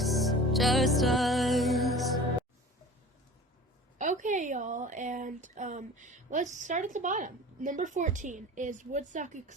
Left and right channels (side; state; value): both; normal; correlation 0.39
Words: just us. Okay, y'all, and let's start at the bottom. Number 14 is Woodstock